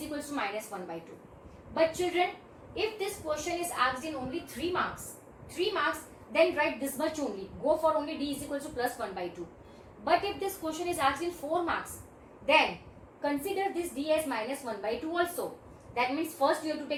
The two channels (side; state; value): both; identical; correlation 1.00